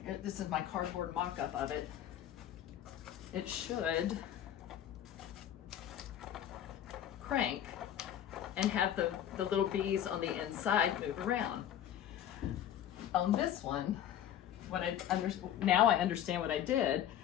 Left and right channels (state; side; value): quieter; right; 10.7 dB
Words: is my cardboard mock-up of it, it should crank and have the little bees on the inside move around. On this one, now I understand what I did.